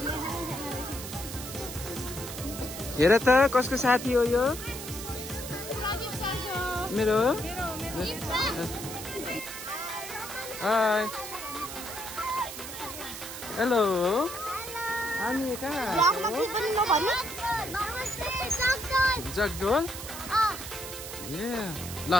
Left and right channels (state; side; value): noise; right; hiss, 9 dB below the sound